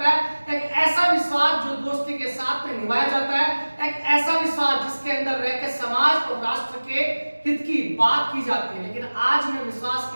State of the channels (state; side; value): inverted; both; correlation -1.00